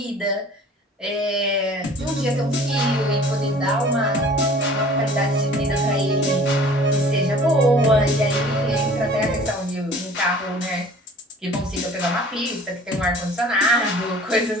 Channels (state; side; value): normal; both; correlation 0.48